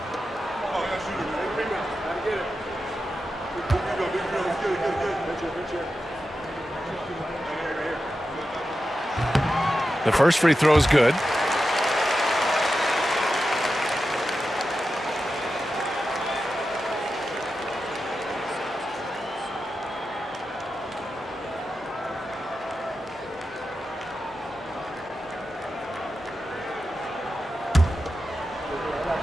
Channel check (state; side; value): normal; both; correlation 0.91